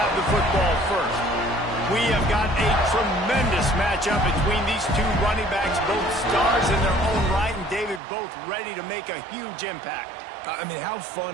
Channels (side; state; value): left; drops out; at 8.0 s